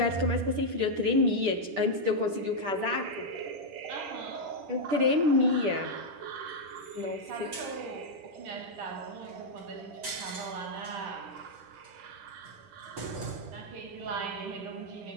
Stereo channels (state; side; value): late; left; 10 ms